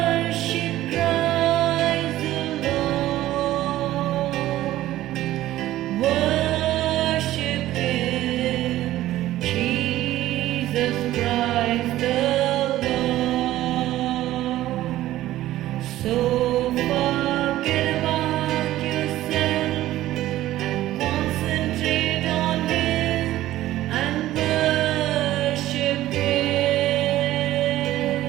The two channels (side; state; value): left; quieter; 14.7 dB